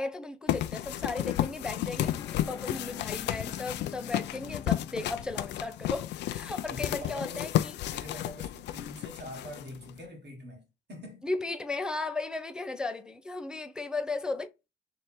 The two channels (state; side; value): quieter; right; 7.0 dB